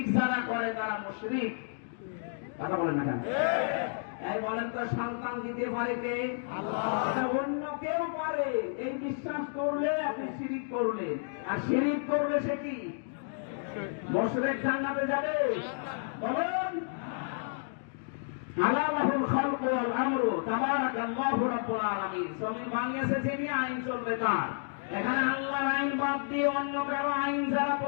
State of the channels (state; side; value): silent; right; digital silence